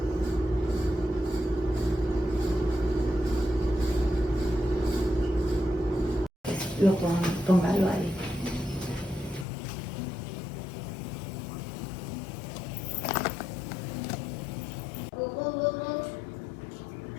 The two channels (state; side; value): drops out; right; at 9.5 s